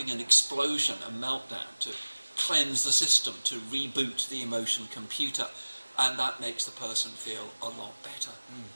an explosion, a meltdown, to cleanse the system, to reboot the emotion computer, and that makes the person feel a lot better.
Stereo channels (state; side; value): inverted; both; correlation -1.00